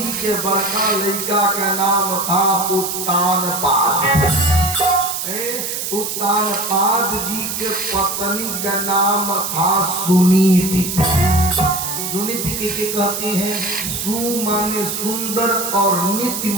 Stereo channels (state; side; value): noise; right; hiss, 4 dB below the sound